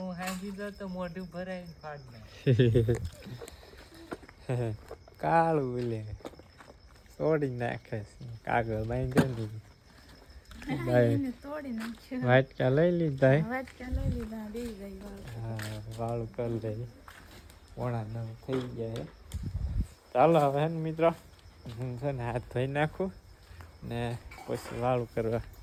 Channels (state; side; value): identical; both; correlation 1.00